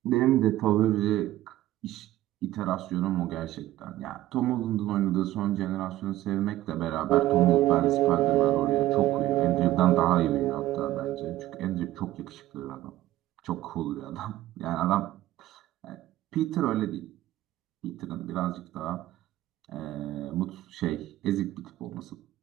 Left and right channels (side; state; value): left; quieter; 15.0 dB